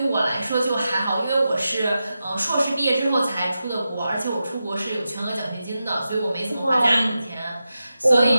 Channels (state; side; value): inverted; both; correlation -0.90